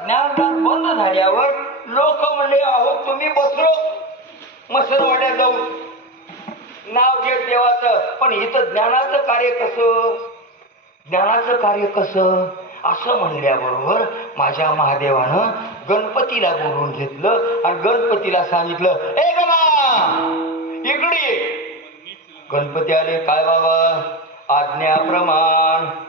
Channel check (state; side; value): normal; both; correlation 0.19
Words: ज्ञानदान बंद झाल्यावर लोक म्हणले, अहो तुम्ही बसलो मसरवाड्यात जाऊन नाव घेत देवाचं, पण इथं ज्ञानाचं कार्य कसं, ज्ञानाचं कार्य कसं असं म्हणल्याबरोबर माझ्या महादेवानं गणपतीला बोलवून घेतलं आणि गणपतीला सांगितलं, ए गणा इकडे. गणपती आले. काय बाबा? आज्ञाप्रमाण.